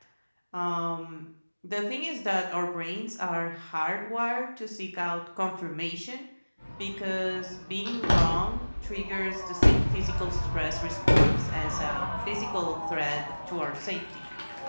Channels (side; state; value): both; inverted; correlation -1.00